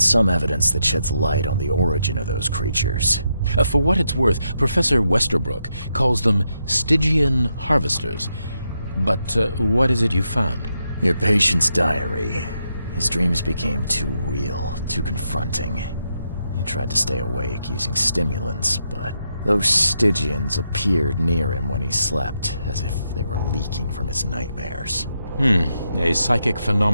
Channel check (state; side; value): inverted; both; correlation -0.82